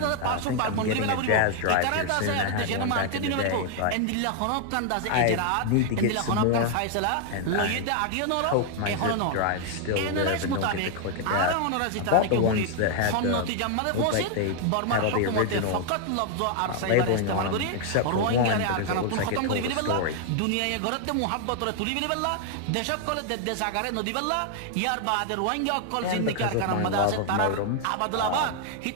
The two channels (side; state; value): both; different; correlation 0.00